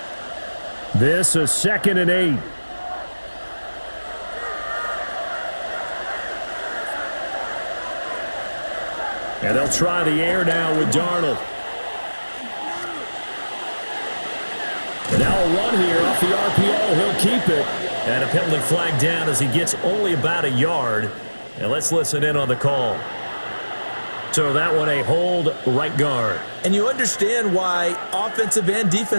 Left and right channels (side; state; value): both; inverted; correlation -1.00